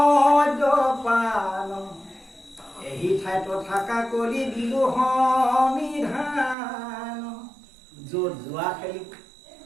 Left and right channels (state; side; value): drops out; left; at 6.6 s